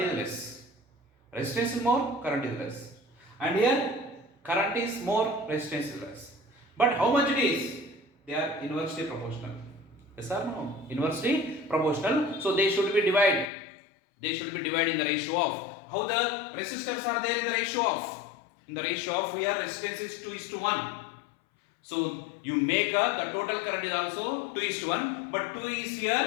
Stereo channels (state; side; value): drops out; right; at 13.5 s